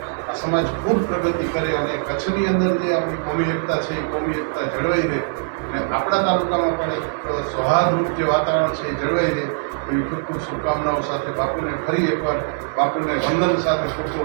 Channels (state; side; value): silent; left; digital silence